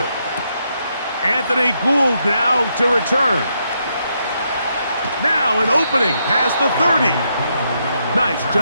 Anthony Gould now to return. Now an opening past the 30. Nice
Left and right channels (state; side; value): inverted; both; correlation -0.78